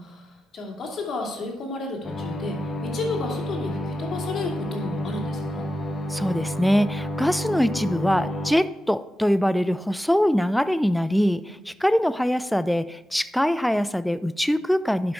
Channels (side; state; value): both; normal; correlation 0.93